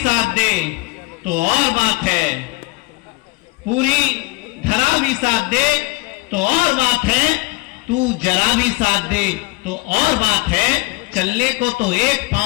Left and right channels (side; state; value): right; quieter; 24.1 dB